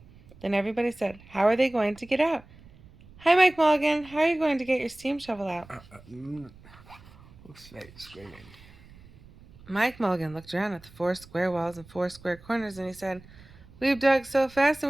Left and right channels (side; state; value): right; noise; rumble, 23 dB below the sound